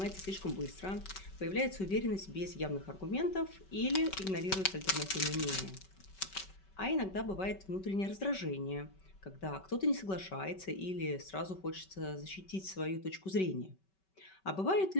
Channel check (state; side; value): late; right; 5.2 ms